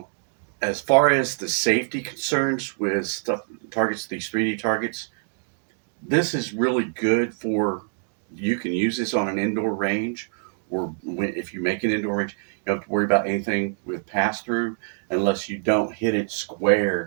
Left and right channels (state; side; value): silent; left; digital silence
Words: as far as the safety concerns with stuff targets, these 3D targets, this is really good for, you can use this on an indoor range, or if you make an indoor range, you don't have to worry about anything with pass through unless you don't hit it